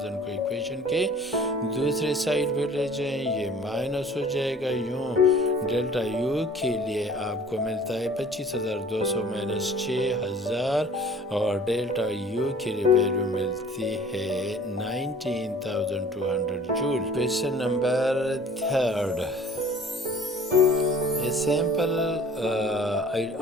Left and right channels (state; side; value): normal; both; correlation 0.49